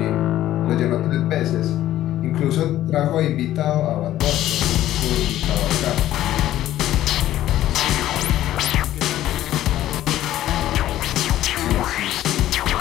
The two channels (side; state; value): right; quieter; 13.4 dB